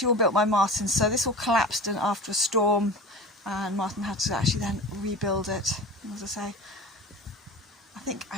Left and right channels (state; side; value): normal; both; correlation 0.34